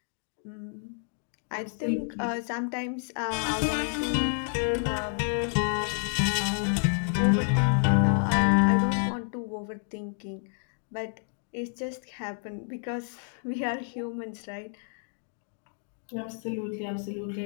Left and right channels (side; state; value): right; silent; 58 dB below the other